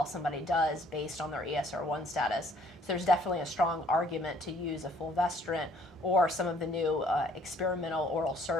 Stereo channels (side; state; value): both; normal; correlation 0.61